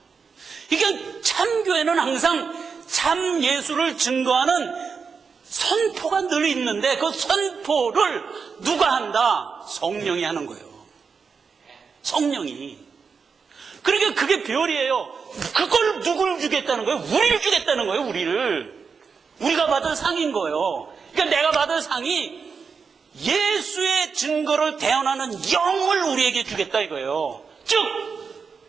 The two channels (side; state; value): left; quieter; 5.6 dB